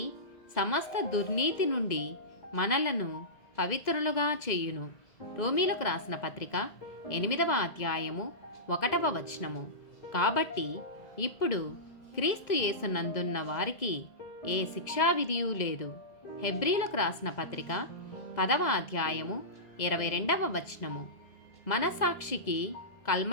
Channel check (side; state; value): right; late; 2.0 ms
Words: సమస్త దుర్నీతి నుండి మనలను పవిత్రులుగా చేయును. రోమీలకు రాసిన పత్రిక 8వ అధ్యాయము 1వ వచనము. కాబట్టి ఇప్పుడు క్రీస్తు యేసునందున్న వారికి ఏ శిక్షావిధియు లేదు. హెబ్రీలకు రాసిన పత్రిక 10వ అధ్యాయము 22వ వచనము. మనసాక్షికి